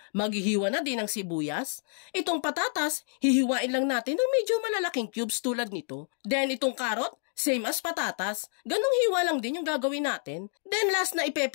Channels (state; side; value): silent; right; 59 dB below the other